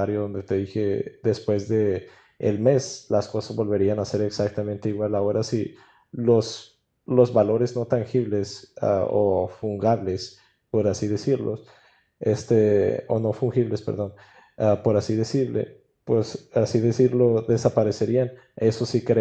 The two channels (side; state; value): both; identical; correlation 1.00